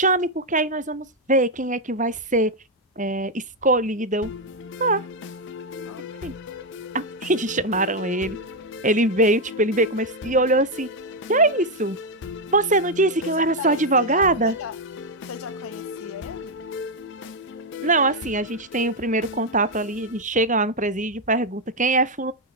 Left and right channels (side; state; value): both; normal; correlation 0.03